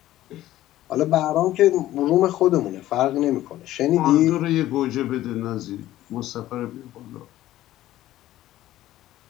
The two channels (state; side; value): quieter; right; 14.4 dB